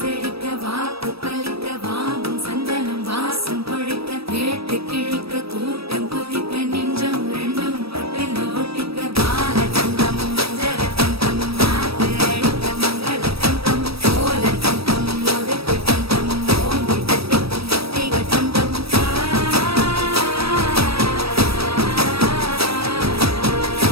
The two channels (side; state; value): left; late; 0.77 ms